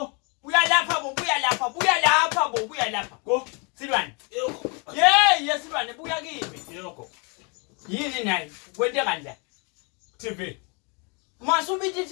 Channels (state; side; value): quieter; right; 33.5 dB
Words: Buya lapha bo, buya lapha, buya lapha bo, buya lapha. Go. Silwane. Yoko. Hey, Silwane, buya kimi. Yoko. Yini nayi? Kwente kanjani? TV. Masubithi